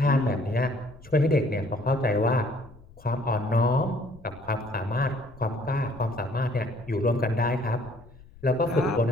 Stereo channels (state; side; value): noise; left; rumble, 22 dB below the sound